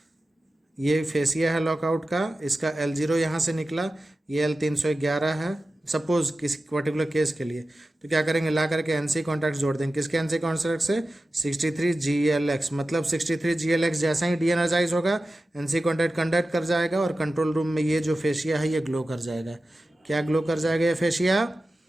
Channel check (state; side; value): normal; both; correlation 0.94